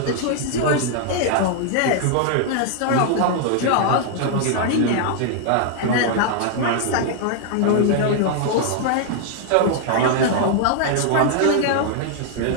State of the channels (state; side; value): different; both; correlation 0.00